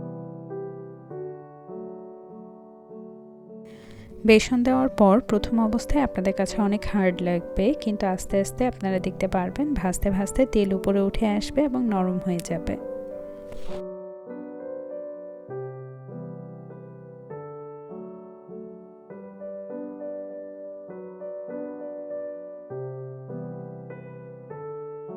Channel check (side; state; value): both; identical; correlation 1.00